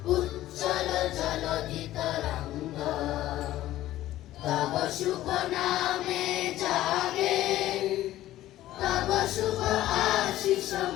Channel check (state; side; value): quieter; right; 14.5 dB